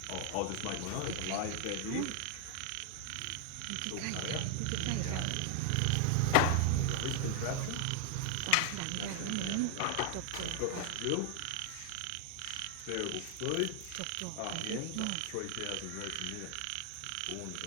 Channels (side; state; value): both; different; correlation 0.00